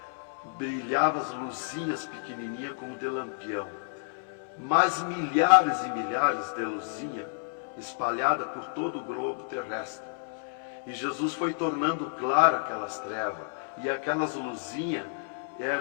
brilhavam as luzinhas pequenininhas como de lampião. Mas milhares e milhares de luzinhas espalhadas por todo o globo terrestre. E Jesus foi tornando claro aquelas trevas. E aquelas luzinhas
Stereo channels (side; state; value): right; silent; 58 dB below the other